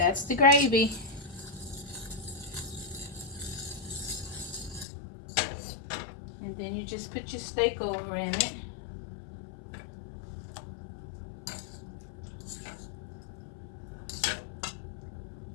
the gravy. And then you just put your steak over in it.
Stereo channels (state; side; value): drops out; right; at 4.9 s